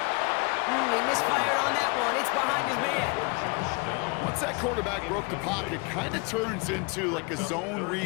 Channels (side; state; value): right; quieter; 30.1 dB